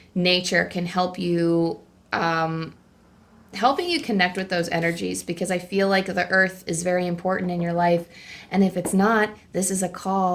nature can help you helping you connect with those energies, because I feel like the earth is very important in your life. And if it's not, this is a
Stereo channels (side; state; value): both; identical; correlation 1.00